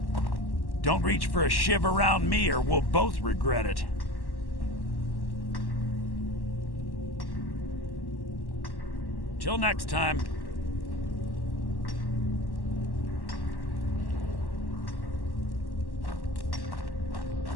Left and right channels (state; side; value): late; right; 1.1 ms